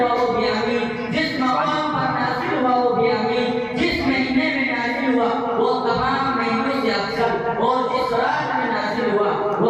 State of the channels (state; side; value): identical; both; correlation 1.00